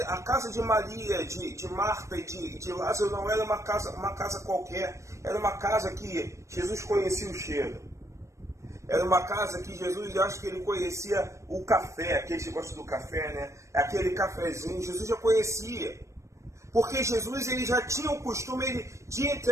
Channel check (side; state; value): left; late; 0.15 ms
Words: a casa de Maria, de Marta e de Lázaro não era uma casa qualquer, era uma casa que Jesus conhecia o cheiro. Era uma casa que Jesus, eu acho que ele conhecia o café, aqueles que gostam do café, né? Aquele cafezinho, Jesus já conhecia. Porque Jesus, ele já tinha o costume de